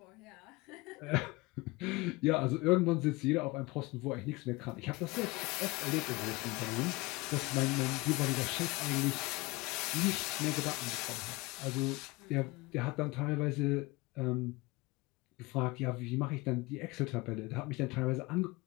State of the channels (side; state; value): right; quieter; 23.3 dB